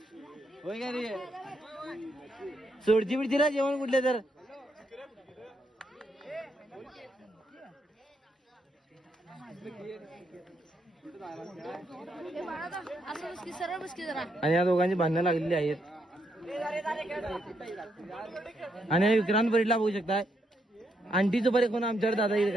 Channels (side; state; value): both; normal; correlation 0.77